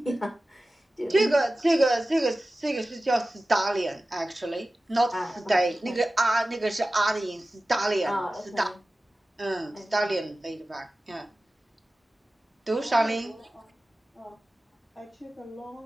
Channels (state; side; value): normal; both; correlation 0.96